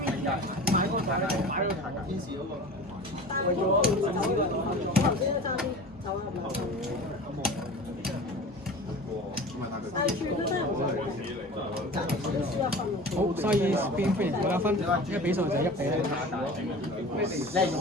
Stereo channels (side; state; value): both; normal; correlation 0.37